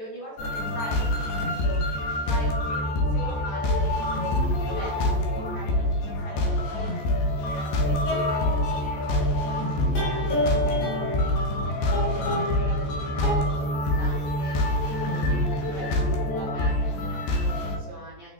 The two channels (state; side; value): late; right; 14 ms